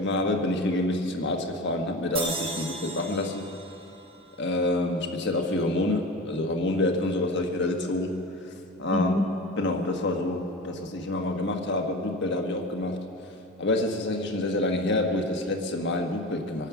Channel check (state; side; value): normal; both; correlation 0.31